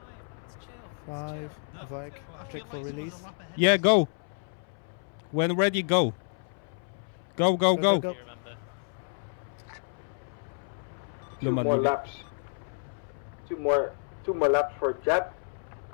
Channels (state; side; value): silent; right; 58 dB below the other